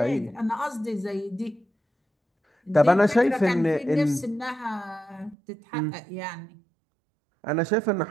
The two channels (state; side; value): drops out; left; at 5.4 s